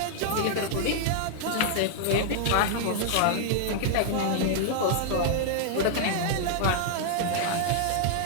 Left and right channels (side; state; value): both; different; correlation -0.01